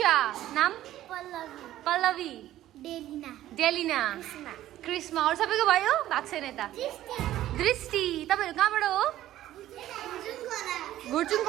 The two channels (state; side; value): quieter; left; 13.7 dB